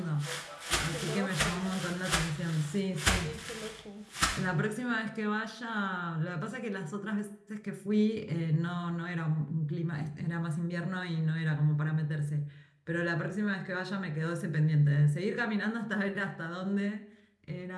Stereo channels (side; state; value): both; identical; correlation 1.00